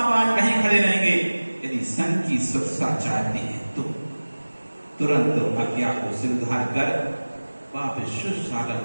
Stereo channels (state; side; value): inverted; both; correlation -1.00